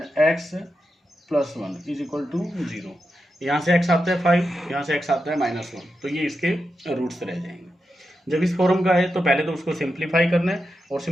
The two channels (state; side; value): normal; both; correlation 0.88